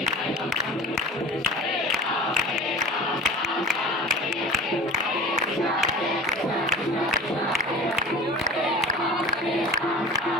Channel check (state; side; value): normal; both; correlation 0.39